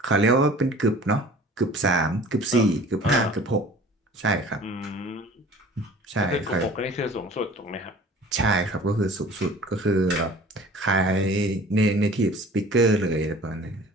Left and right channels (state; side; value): normal; both; correlation 0.46